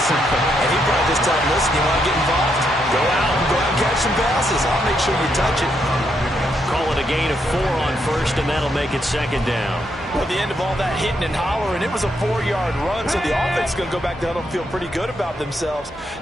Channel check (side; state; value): both; normal; correlation 0.78